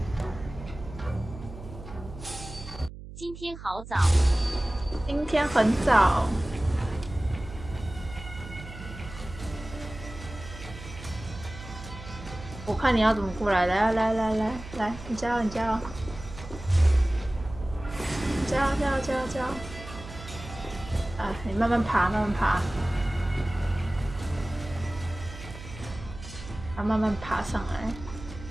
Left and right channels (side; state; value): right; noise; hum, 13 dB below the sound